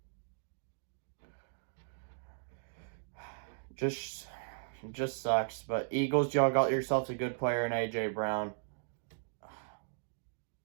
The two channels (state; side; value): silent; left; digital silence